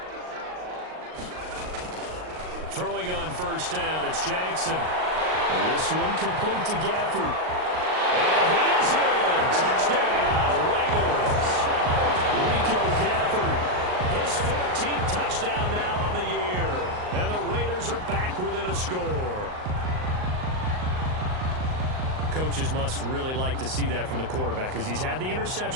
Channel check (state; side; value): late; left; 38 ms